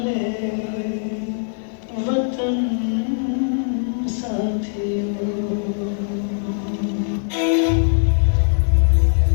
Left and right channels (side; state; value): right; silent; digital silence